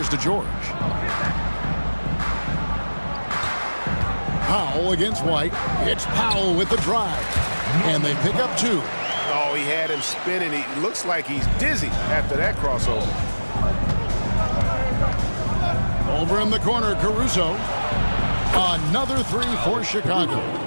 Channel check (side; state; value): both; inverted; correlation -1.00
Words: to George. Powell against White. It's Powell with the drive. And they pick up 2. Oh, he had him spinning. He looks like he's dizzy after that crossover. Over in the corner, Caruso. Another 3 for Chicago.